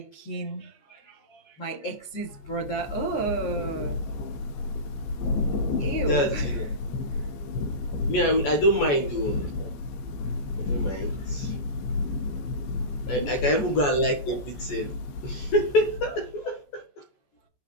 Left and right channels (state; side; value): late; right; 14 ms